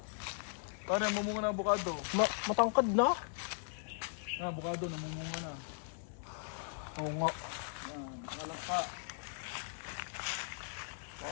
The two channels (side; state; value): right; silent; 52 dB below the other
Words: Pare, mumunga na avocado. Matangkad na. Avocado, namumunga na. Oo nga. Yan, nalangka.